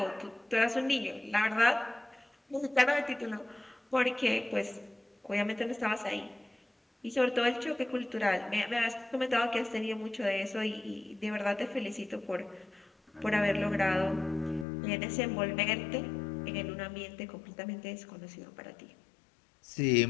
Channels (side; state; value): right; drops out; at 14.7 s